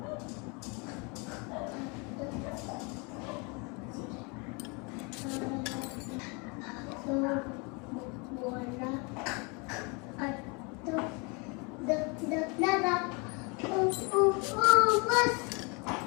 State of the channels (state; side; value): quieter; right; 30.9 dB